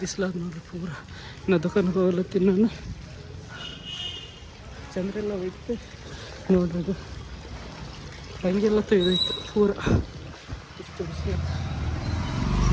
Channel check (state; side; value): identical; both; correlation 1.00